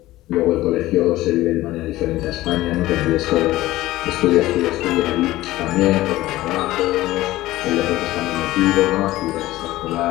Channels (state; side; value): quieter; right; 16.8 dB